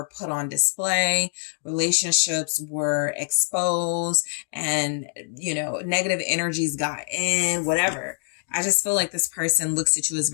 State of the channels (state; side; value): silent; right; digital silence